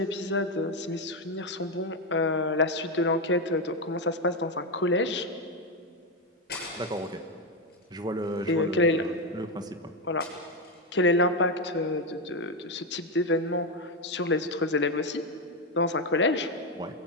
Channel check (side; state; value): both; normal; correlation 0.08